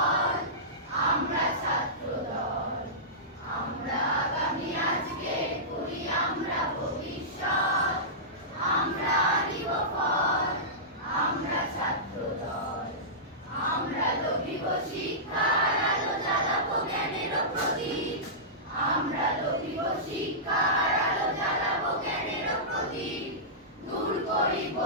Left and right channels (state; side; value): normal; both; correlation -0.17